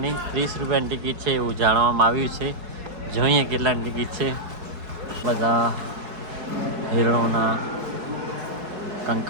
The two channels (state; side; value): late; left; 4.7 ms